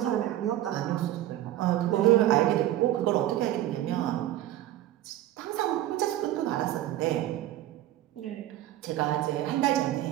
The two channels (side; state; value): left; quieter; 13.8 dB